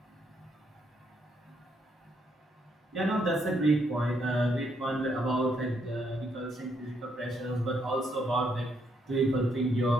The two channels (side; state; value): both; normal; correlation 0.74